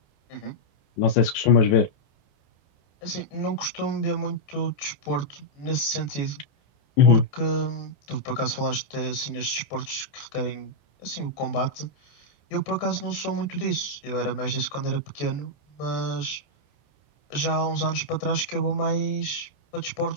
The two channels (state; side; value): late; right; 14 ms